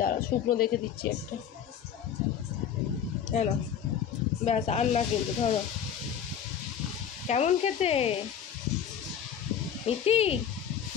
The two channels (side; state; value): right; quieter; 8.5 dB